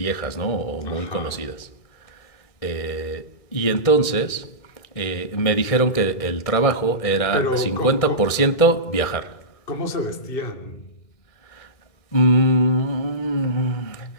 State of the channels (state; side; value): late; right; 1.6 ms